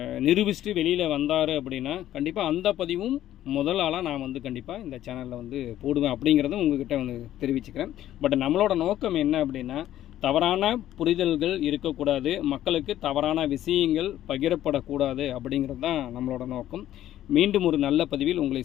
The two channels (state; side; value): quieter; right; 12.7 dB